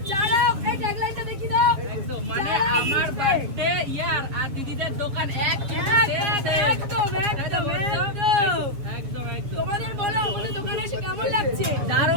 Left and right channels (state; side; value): late; left; 7.5 ms